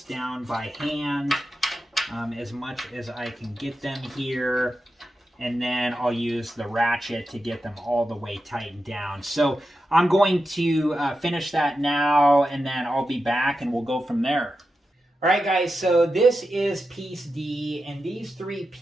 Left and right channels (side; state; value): both; normal; correlation 0.90